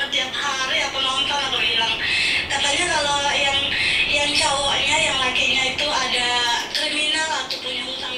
tiap hari. Aku nonton. Aku bilang katanya kalau yang cowok pokoknya yang lakinya itu ada kriminal atau punya hutang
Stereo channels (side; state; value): both; identical; correlation 1.00